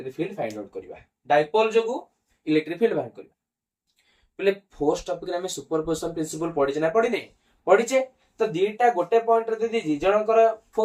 फील्ड फाइंड आउट करबा डायपोल जोगु इलेक्ट्रिक फील्ड बाहर करबा पिले फोर्स टॉपिक रे हमें सुपरपोजिशन प्रिंसिपल पढि ना पढि नै पढिचे तो दीटा गोटे पॉइंट रे दि दि जनकर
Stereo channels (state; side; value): identical; both; correlation 1.00